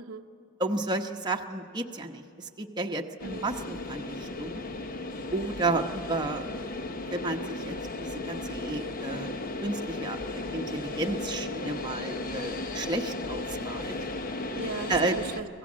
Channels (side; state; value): both; normal; correlation 0.26